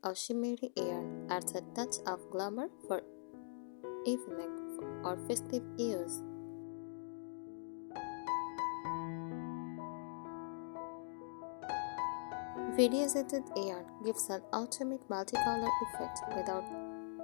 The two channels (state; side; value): silent; right; digital silence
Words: or shimmery yarn adds a touch of glamour for evening or festive use. Variegated yarn gives an ultimate multicolor effect without